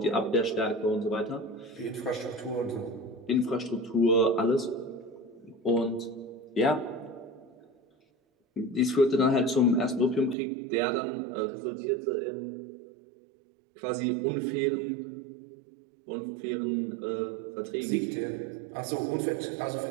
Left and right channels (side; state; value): left; drops out; at 10.4 s